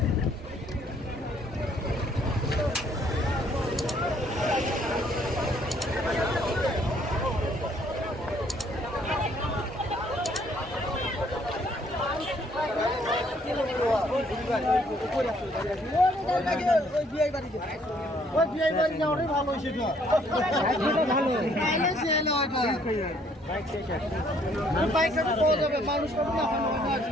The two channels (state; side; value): normal; both; correlation 0.64